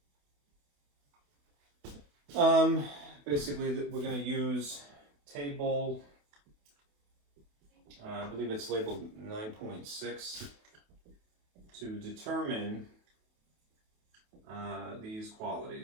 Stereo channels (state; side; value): late; left; 28 ms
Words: Basically, we're going to use table, I believe it's labeled 9.6, to determine these